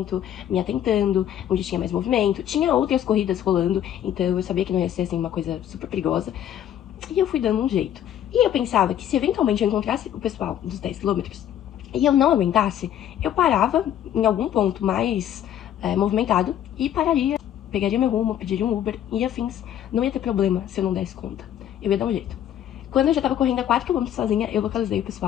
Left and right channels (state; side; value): quieter; right; 10.7 dB